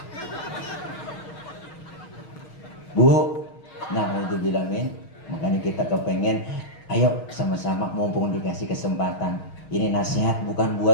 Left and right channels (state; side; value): late; right; 6.3 ms